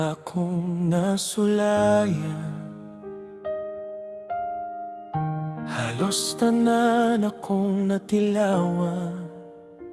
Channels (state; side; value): identical; both; correlation 1.00